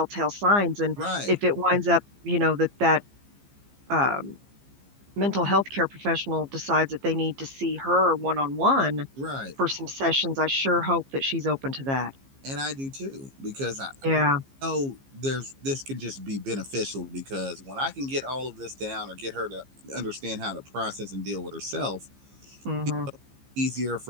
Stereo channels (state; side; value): late; left; 15 ms